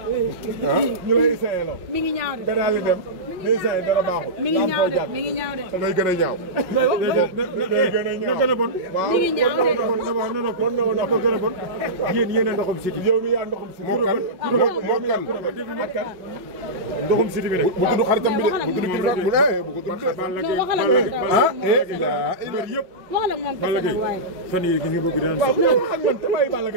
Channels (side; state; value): left; late; 5.4 ms